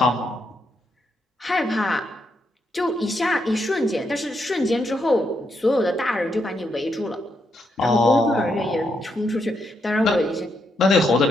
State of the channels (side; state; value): both; normal; correlation 0.80